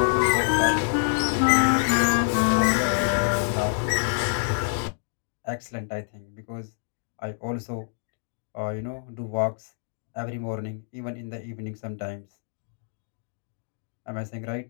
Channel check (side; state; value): right; silent; digital silence